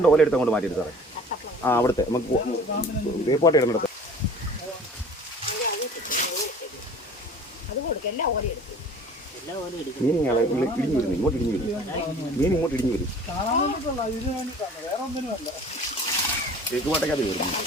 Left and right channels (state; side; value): normal; both; correlation 0.45